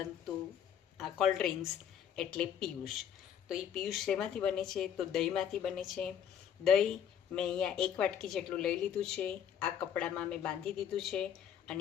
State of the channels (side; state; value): right; quieter; 8.9 dB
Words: આ કોલ્ડ ડ્રિંક્સ એટલે પિયુષ. તો એ પિયુષ શેમાંથી બને છે? તો દહીંમાંથી બને છે. દહીં મેં અહીંયા 1 વાટકી જેટલું લઈ લીધું છે. આ કપડામાં મેં બાંધી દીધું છે